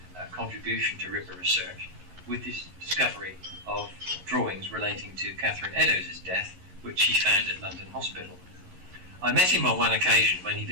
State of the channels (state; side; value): late; left; 11 ms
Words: contribution to Ripper research with his discovery of drawings relating to Catherine Eddowes' death, which he found at London Hospital. I met him on one occasion when he